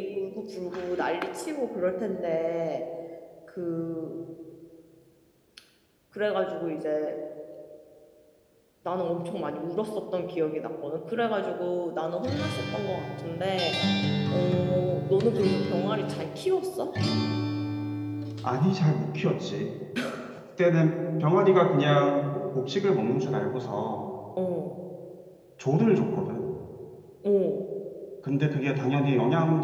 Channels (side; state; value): both; identical; correlation 1.00